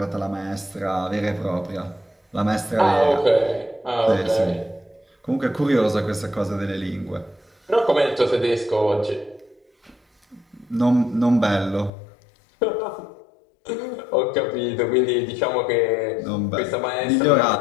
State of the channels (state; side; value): drops out; right; at 11.9 s